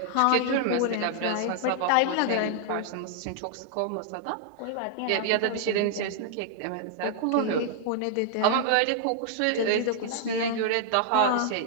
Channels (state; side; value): different; both; correlation -0.01